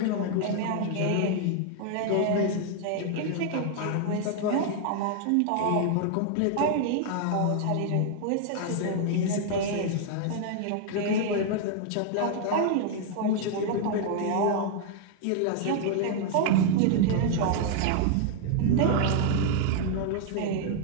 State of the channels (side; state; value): both; different; correlation 0.00